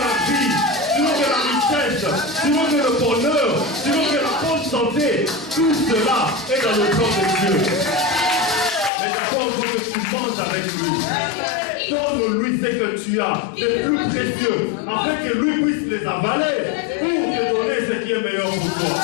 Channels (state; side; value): drops out; right; at 8.9 s